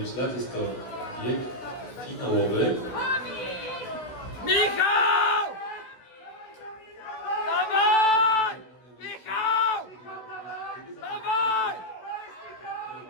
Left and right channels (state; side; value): late; right; 16 ms